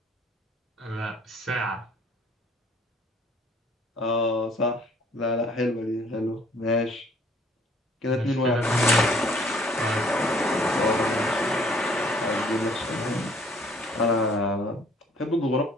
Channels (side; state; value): both; normal; correlation 0.59